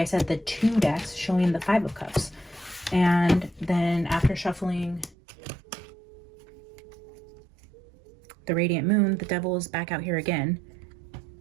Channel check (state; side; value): drops out; left; at 5.2 s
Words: said, the 2 decks showing the Five of Cups. And then after shuffling the Radiant Moon, the Devil is back out here again.